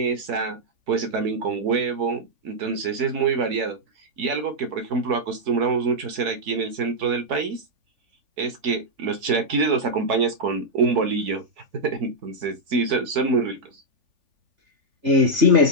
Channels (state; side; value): late; left; 3.5 ms